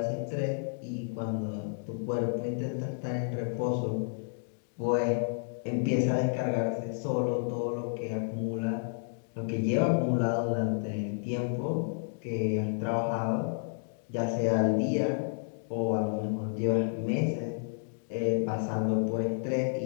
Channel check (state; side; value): silent; right; digital silence